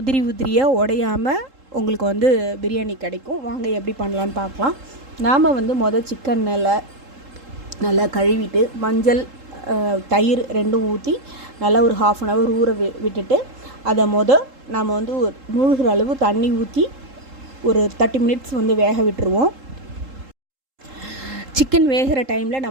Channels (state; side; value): late; left; 3.7 ms